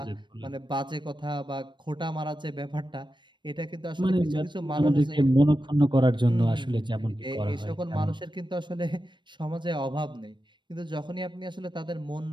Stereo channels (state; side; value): late; left; 0.22 ms